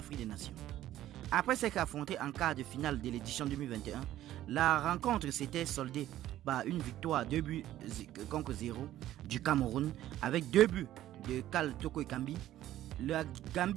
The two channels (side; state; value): left; quieter; 13.4 dB